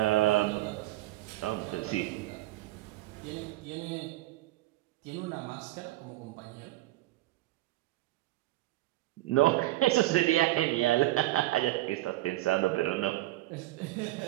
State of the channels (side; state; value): left; quieter; 17.1 dB